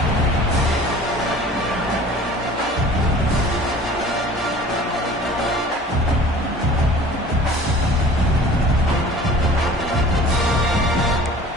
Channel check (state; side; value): normal; both; correlation 0.45